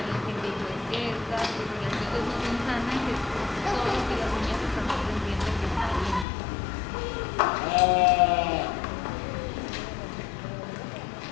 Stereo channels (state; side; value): drops out; right; at 6.2 s